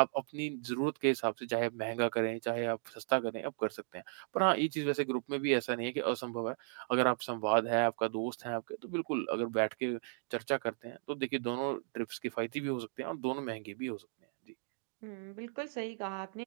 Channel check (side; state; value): left; silent; digital silence